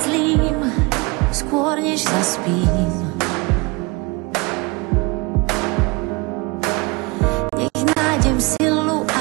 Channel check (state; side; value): quieter; left; 26.3 dB